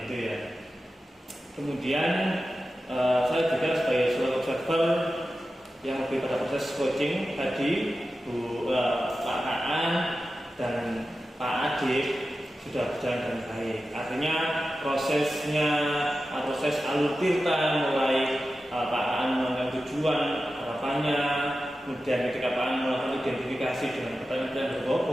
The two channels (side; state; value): both; normal; correlation 0.93